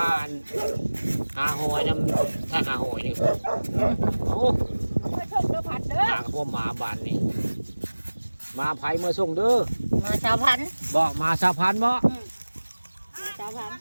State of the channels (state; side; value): inverted; both; correlation -1.00